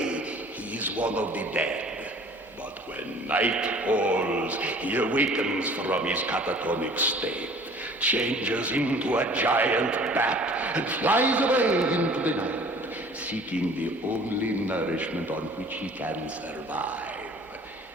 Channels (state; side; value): normal; both; correlation 0.49